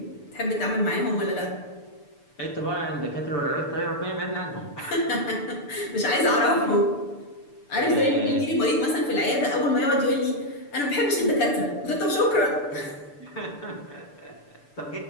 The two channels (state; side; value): late; right; 6.9 ms